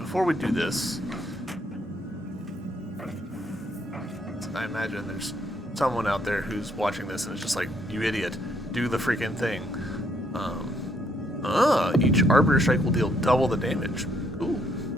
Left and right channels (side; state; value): both; normal; correlation 0.71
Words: we do this, I imagine there's someone out there who's watching this and is just like, you idiot, do the freaking thing. Each Arbiter Strike will deal double the damage. Ooh.